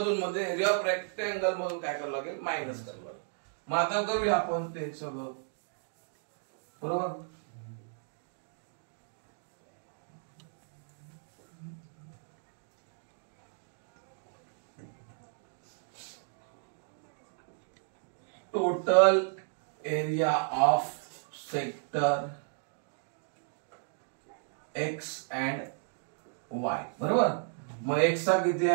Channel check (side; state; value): left; silent; digital silence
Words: म्हणजे एरिया ऑफ रेक्टेंगल मधून काय करावं लागेल मायनस करावं लागेल. मग आता करूया आपण ते सगळं बरोबर. Total area of sector x and Y बरोबर. मग एक्स चा किती